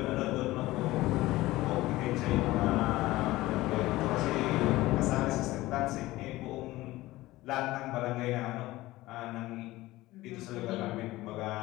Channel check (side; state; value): right; quieter; 18.0 dB